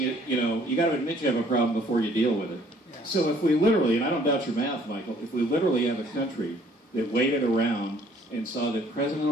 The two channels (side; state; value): both; normal; correlation 0.60